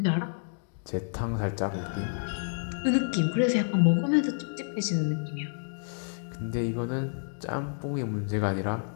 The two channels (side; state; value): right; silent; digital silence